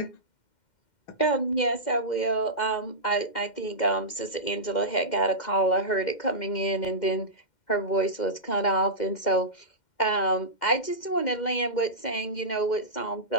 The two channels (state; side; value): late; right; 2.1 ms